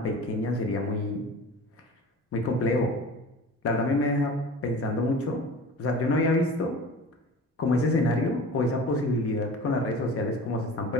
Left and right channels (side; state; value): both; normal; correlation 0.38